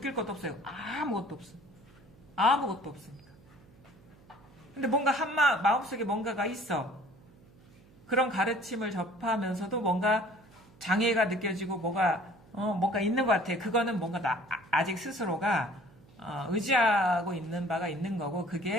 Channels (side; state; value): right; noise; hum, 26 dB below the sound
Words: 것도 없어요. 아무것도 없어. 아무것도 없으니까. 근데 뭔가 마음속에 뭔가가 있어. 그런 가르침을 접하면서도 뭔가 장애가 느껴지고 뭔가 있는 것 같아. 그거는 뭔가 아직 스스로가 의지하고 있는 바가 있는 거고